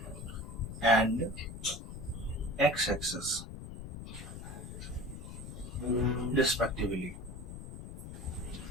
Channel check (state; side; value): noise; left; rumble, 10 dB below the sound